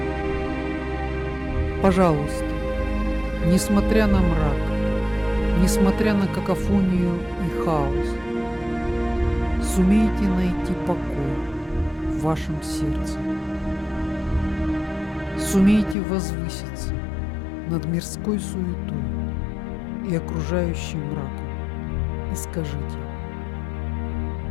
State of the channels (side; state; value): right; drops out; at 16.0 s